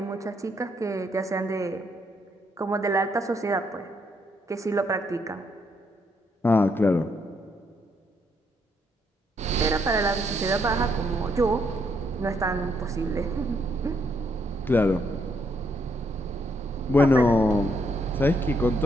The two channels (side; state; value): both; normal; correlation 0.74